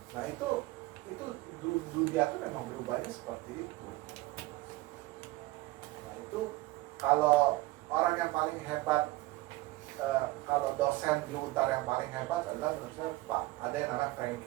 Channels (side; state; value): left; quieter; 19.6 dB